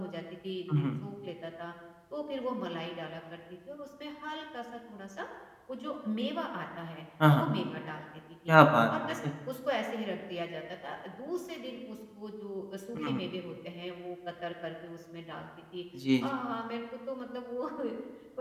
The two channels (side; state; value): both; identical; correlation 1.00